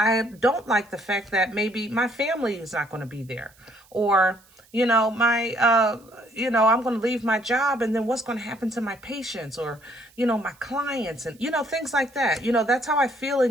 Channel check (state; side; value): noise; right; hiss, 29 dB below the sound